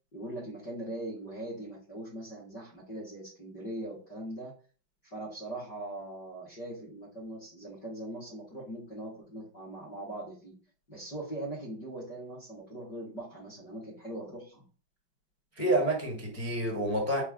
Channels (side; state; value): right; late; 5.3 ms